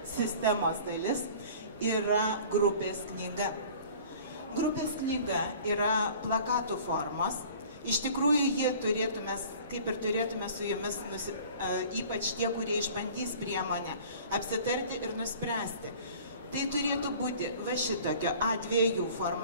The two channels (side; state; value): both; inverted; correlation -0.46